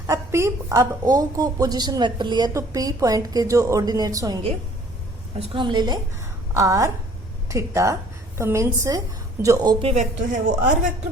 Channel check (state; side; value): normal; both; correlation 0.56